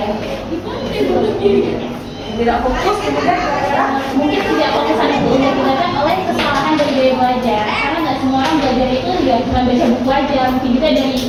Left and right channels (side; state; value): both; identical; correlation 1.00